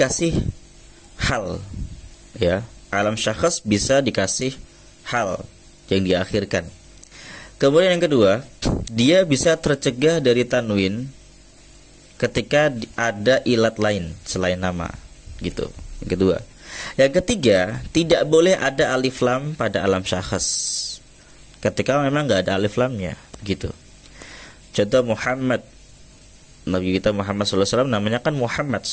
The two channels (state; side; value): identical; both; correlation 1.00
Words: hal ya. Alam syakhs bisa dikasih hal yang diakhirkan. Kemudian yang kedua, dia bisa tercegah dari tanwin ketika ada ilat lain selain nama gitu. Yang kedua. Yang ketiga, tidak boleh ada alif lam pada alam syakhs ketika memang nggak ada alif lamnya gitu. Contoh Muhammad, Nabi kita Muhammad SAW namanya kan Muhammad.